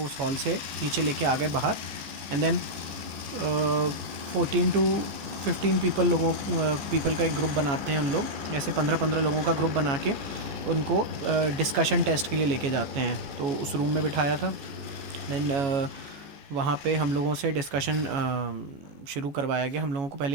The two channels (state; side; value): late; left; 14 ms